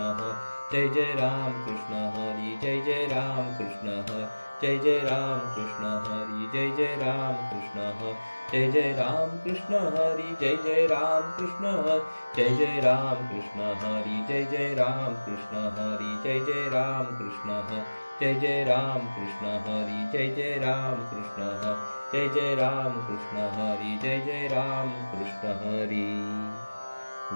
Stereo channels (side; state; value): both; inverted; correlation -1.00